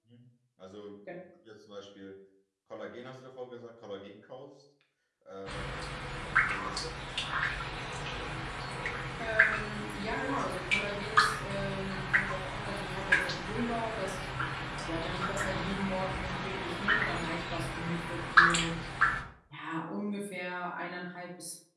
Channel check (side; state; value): both; identical; correlation 1.00